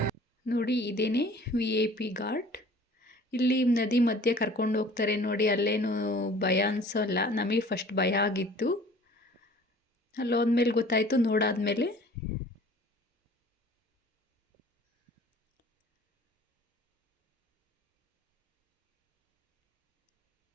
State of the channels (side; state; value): both; normal; correlation 0.49